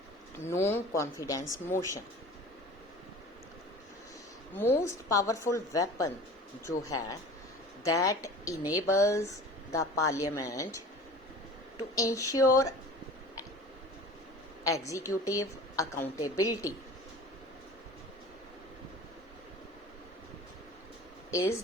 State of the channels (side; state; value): both; normal; correlation 0.41